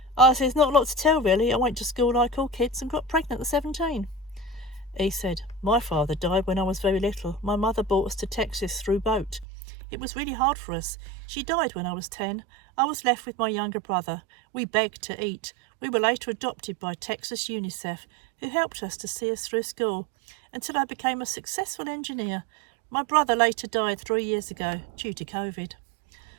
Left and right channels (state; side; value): drops out; left; at 9.5 s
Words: I said, there's not a lot to tell really. I went to school like all kids and got pregnant at 17. He said, my father died when I was very little. My mother brought us to Texas through boat. It was really hard for us. She died when I was 10. I was left with my younger brother. We begged to eat. We were later adopted by Texas UNICEF, who helped us to see us through school until I became a successful engineer. My brother later died 3 years ago due to COVID.